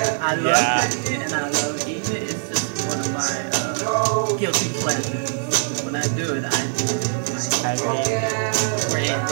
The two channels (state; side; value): silent; left; 64 dB below the other